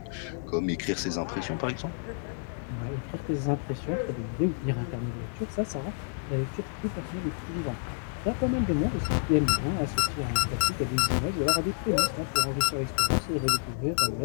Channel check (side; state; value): right; silent; digital silence